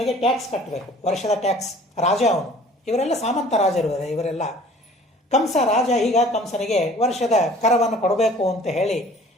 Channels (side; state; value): both; normal; correlation 0.50